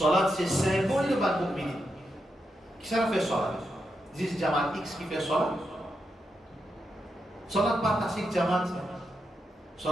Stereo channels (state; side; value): normal; both; correlation 0.85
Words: c'est symbole de Bal Mu'minin. Qui ça fait salat? Dis Jamal X qui fait salat. Salat pas tasik Jamal.